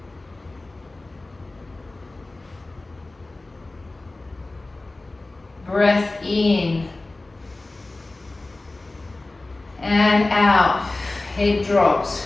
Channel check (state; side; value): quieter; right; 3.0 dB